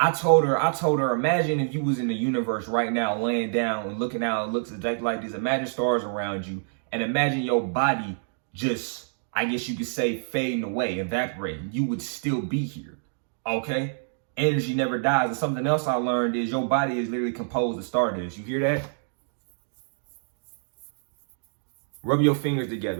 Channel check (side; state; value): left; silent; digital silence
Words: told her, imagine if you was in the universe right now, laying down and looking out, it looks exactly like this. Imagine stars around you and imagine your body just, I guess you could say, fading away, evaporating. You would still be here, okay? Energy never dies. And something else I learned is your body is literally composed of stardust. You hear that? Rub your fingers together.